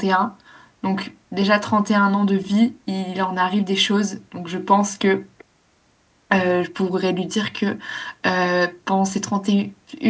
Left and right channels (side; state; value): both; identical; correlation 1.00